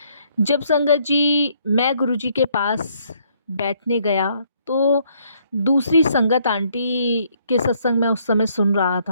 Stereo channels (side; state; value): both; inverted; correlation -0.68